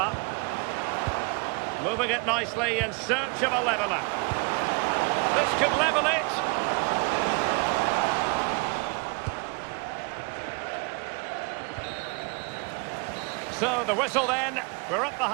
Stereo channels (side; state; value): left; quieter; 30.9 dB